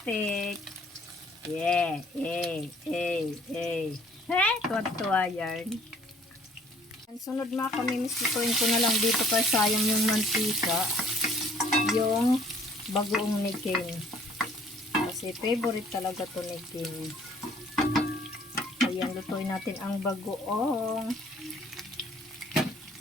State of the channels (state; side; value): normal; both; correlation 0.58